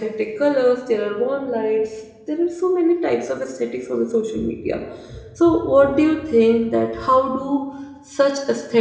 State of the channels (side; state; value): both; identical; correlation 1.00